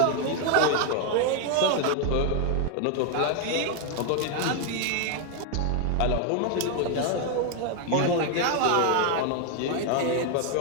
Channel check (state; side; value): different; both; correlation 0.01